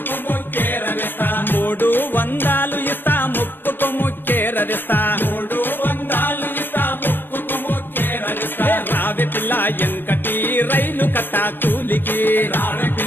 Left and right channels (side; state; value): right; late; 0.096 ms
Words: ముక్కేరవేస్తా 300 ఇస్తా ముక్కుకు ముచ్చేరదిస్తా 300 ఇస్తా ముక్కుకు ముక్కేరవేస్తా రావే పిల్ల ఎంకటి రైలు కట్ట కూలికి రావే